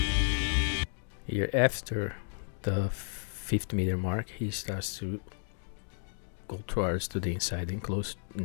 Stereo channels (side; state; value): right; silent; 56 dB below the other